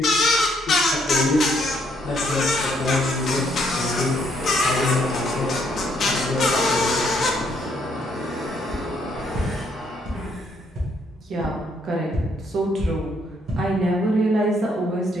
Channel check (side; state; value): both; normal; correlation 0.70